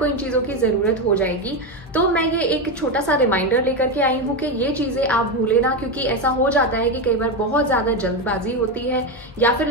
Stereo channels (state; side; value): normal; both; correlation 0.12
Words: इन चीजों की जरूरत हो जाएगी। तो मैं ये एक छोटा सा रिमाइंडर लेकर के आई हूँ कि ये चीजें आप भूले ना, क्योंकि ऐसा हो जाता है कि कई बार बहुत ज्यादा जल्दबाजी होती है या फिर